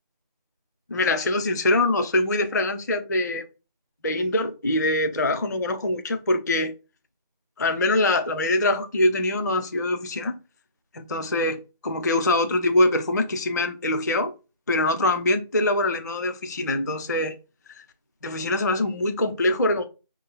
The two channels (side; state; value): both; inverted; correlation -0.45